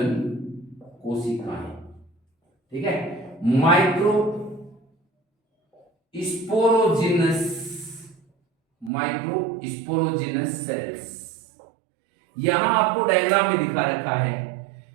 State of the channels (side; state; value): left; drops out; at 8.9 s